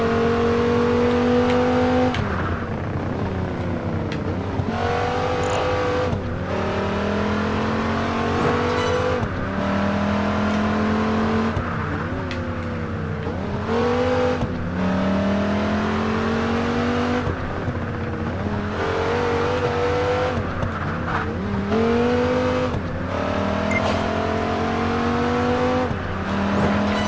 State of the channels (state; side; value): identical; both; correlation 1.00